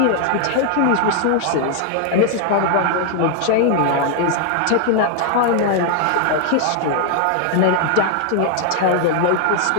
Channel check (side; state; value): both; different; correlation 0.00